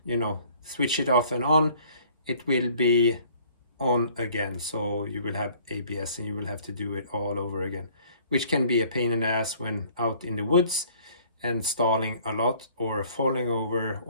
switch it off and on, it will be on again, so you will have ABS and you will have to do it all over again, which can be a pain in the ass when out in the woods and stalling a lot or falling over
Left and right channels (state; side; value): inverted; both; correlation -0.56